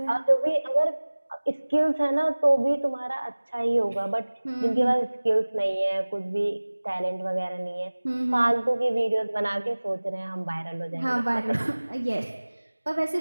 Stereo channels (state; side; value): inverted; both; correlation -1.00